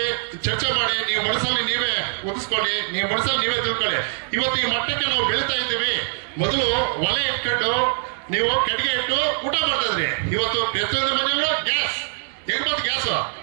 ಚರ್ಚೆ ಮಾಡಿ, ನೀವು ಮನಸ್ಸಲ್ಲಿ ನೀವೇ ಒದಿಸ್ಕೊಳ್ಳಿ, ನೀವು ಮನಸ್ಸಲ್ಲಿ ನೀವೇ ತಿಳ್ಕೊಳ್ಳಿ. ಇವತ್ತು ಈ ಮಟ್ಟಕ್ಕೆ ನಾವು ಬೆಳೀತಾ ಇದ್ದೀವಿ. ಮೊದಲು ಒಲೆ ಇಟ್ಕೊಂಡು ನೀವು ಕಟ್ಟಿಗೆ ಇಟ್ಟು ಊಟ ಮಾಡ್ತಾ ಇದ್ರಿ. ಇವತ್ತು ಪ್ರತಿಯೊಂದು ಮನೆಯಲ್ಲೂ ಗ್ಯಾಸ್.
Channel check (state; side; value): silent; left; digital silence